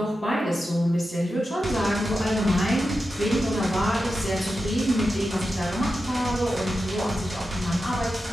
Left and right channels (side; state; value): both; normal; correlation 0.90